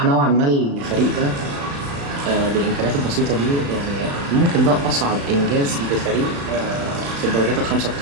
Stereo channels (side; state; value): left; late; 35 ms